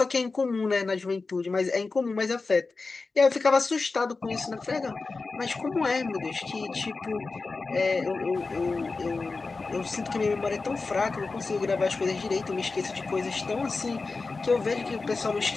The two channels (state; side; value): quieter; right; 4.0 dB